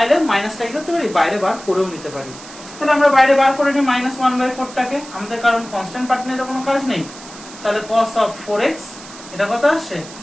মাইনাসটা কি করতে পারি, বাইরে বার করেও নিতে পারি। তাহলে আমরা বাইরে বার করে নিই -1/4 টাকে, আমাদের কারণ কনস্ট্যান্ট পার্ট নিয়ে তো কোনো কাজ নেই। তাহলে cos of 4x এটা কত আসছে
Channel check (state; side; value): noise; right; hiss, 17 dB below the sound